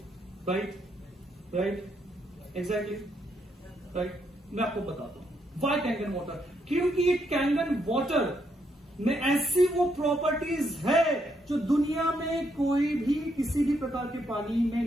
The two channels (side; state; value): both; normal; correlation 0.76